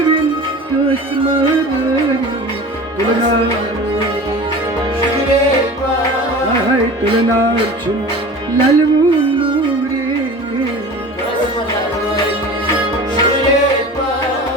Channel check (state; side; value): normal; both; correlation 0.37